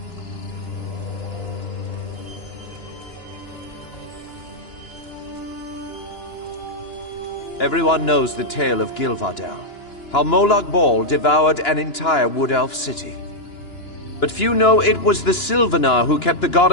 Everyone knows the tale of Gilvardel, how Molag Bal devoured an entire wood elf city. But few know it was the Sylvanar who kept the god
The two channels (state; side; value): late; right; 2.9 ms